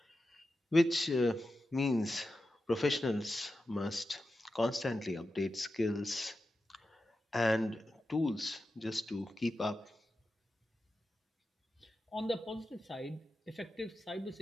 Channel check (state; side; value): normal; both; correlation 0.91